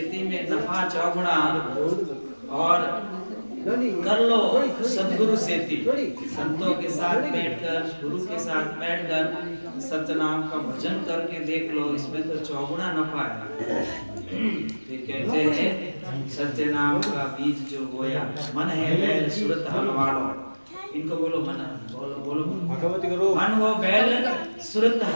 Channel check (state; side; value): inverted; both; correlation -1.00